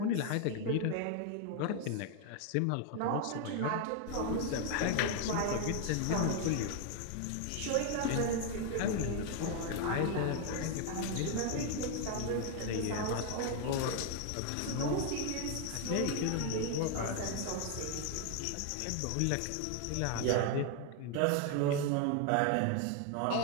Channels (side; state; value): both; different; correlation 0.01